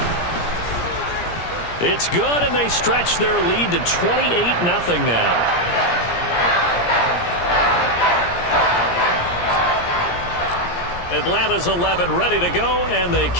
It's good, and they stretch their lead to 28-0 now. Atlanta's 11 ready to go, and they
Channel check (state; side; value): late; right; 17 ms